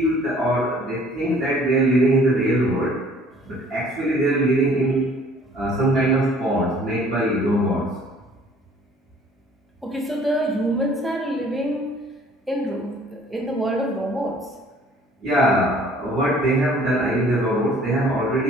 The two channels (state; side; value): normal; both; correlation 0.55